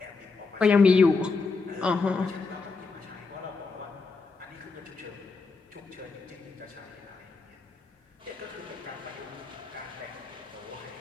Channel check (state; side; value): quieter; right; 4.3 dB